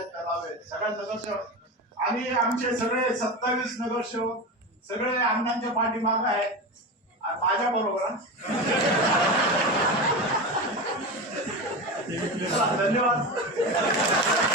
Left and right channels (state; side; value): normal; both; correlation 0.23